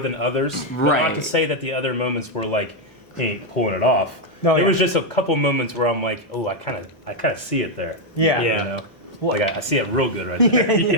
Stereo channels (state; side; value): normal; both; correlation 0.01